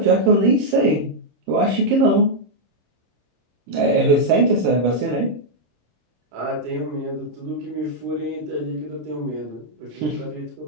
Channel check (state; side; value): late; left; 26 ms